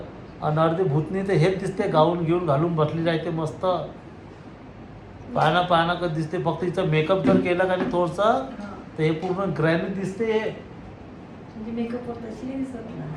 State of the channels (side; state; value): both; identical; correlation 1.00